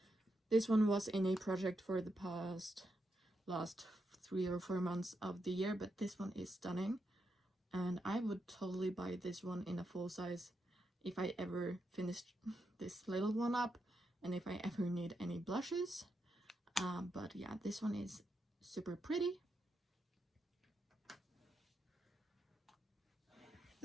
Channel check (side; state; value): both; normal; correlation 0.84